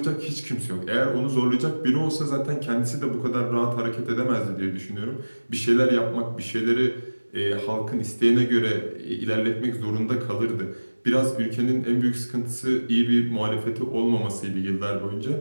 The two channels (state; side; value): inverted; both; correlation -1.00